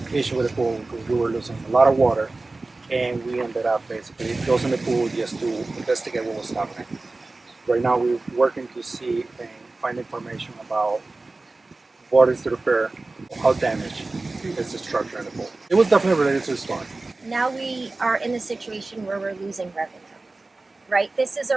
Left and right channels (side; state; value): left; quieter; 3.3 dB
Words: issue with the pool because we were losing a lot of water, and we ended up basically closing the pool just to investigate what was happening. Right now we're working to see and find information about what is the repair, how damaged is the structure in the pool. It was definitely related to the storm. Now we are in a situation where we're losing revenue, right? This is